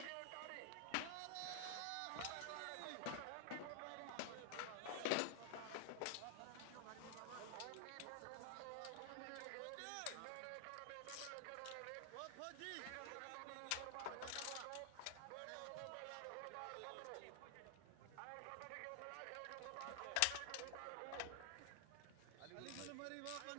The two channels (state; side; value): different; both; correlation 0.00